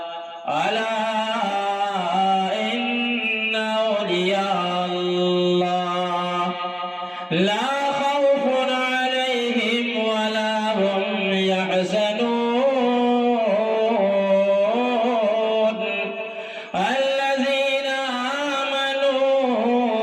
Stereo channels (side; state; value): both; identical; correlation 1.00